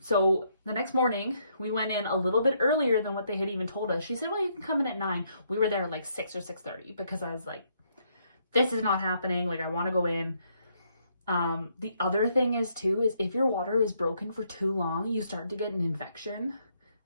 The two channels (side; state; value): both; inverted; correlation -0.73